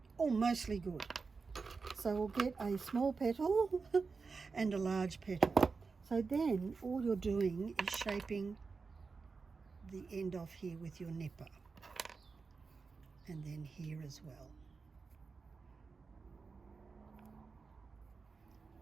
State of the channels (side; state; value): left; quieter; 4.6 dB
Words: Oh, mostly good. So we'll get a small petal and a large petal. So then all you're doing is shaping the end off here with your nipper, and then here as well.